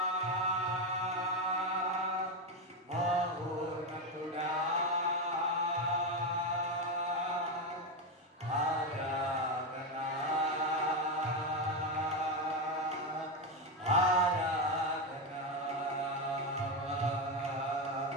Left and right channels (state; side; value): normal; both; correlation 0.10